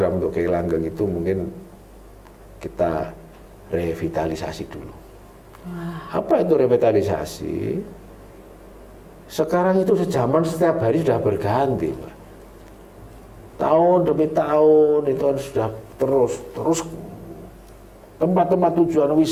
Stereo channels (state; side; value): identical; both; correlation 1.00